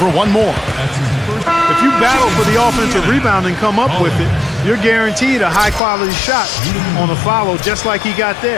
one more. If you battle for the offensive rebound and come up with it, you're guaranteed a high-quality shot on a follow just like he got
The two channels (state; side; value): drops out; right; at 5.8 s